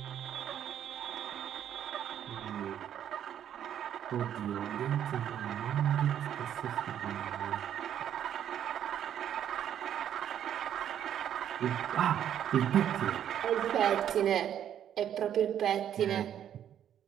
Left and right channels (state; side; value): quieter; left; 10.0 dB